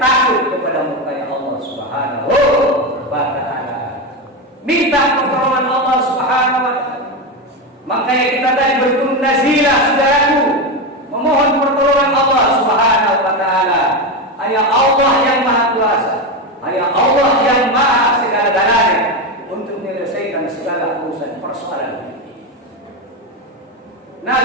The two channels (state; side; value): normal; both; correlation 0.14